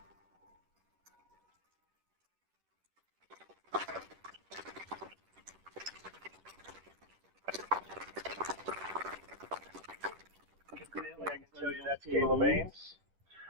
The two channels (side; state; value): left; late; 10 ms